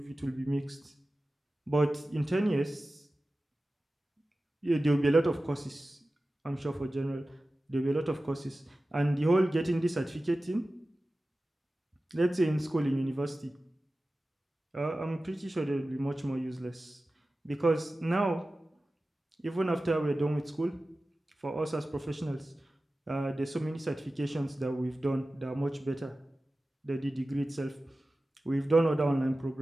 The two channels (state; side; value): normal; both; correlation 0.95